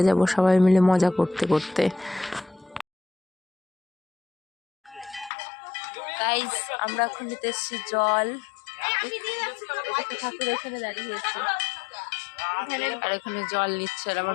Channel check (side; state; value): right; drops out; at 5.3 s